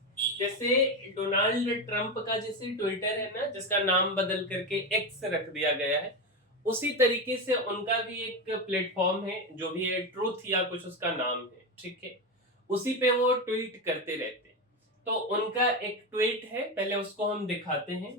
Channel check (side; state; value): both; normal; correlation 0.15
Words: जैसे डोनाल्ड ट्रंप का जैसे ट्विटर है ना, जिसका नाम बदल करके एक्स रख दिया गया है, उसी तरीके से उनका भी एक प्लेटफॉर्म है जो भी है ट्रूथ या कुछ उसका नाम है, ठीक है। उसी पे वो ट्वीट करते रहते हैं। तो उनका एक ट्वीट है, पहले उसको हम दिखाते हैं।